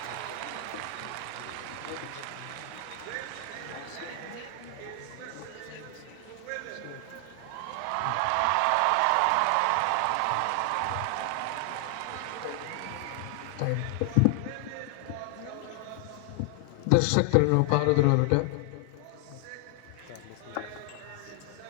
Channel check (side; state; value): both; different; correlation 0.00